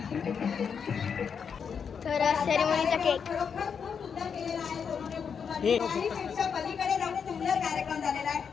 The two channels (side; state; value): right; quieter; 6.7 dB